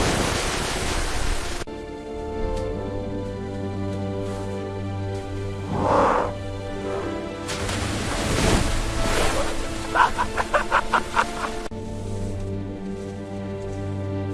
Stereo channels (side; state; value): both; identical; correlation 1.00